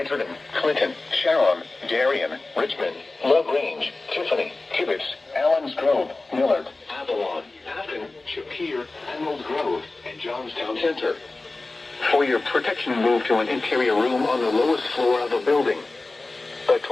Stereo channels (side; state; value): right; quieter; 3.2 dB